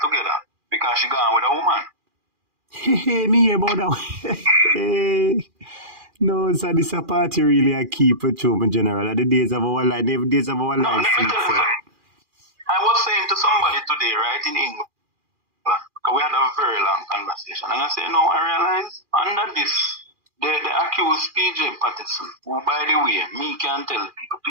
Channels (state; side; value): late; left; 2.4 ms